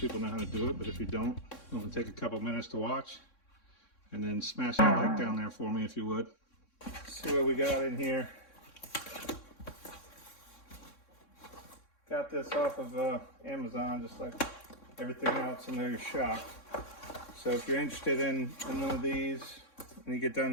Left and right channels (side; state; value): right; late; 3.6 ms